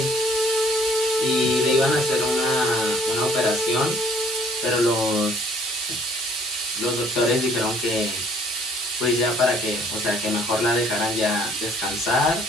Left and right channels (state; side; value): normal; both; correlation 0.59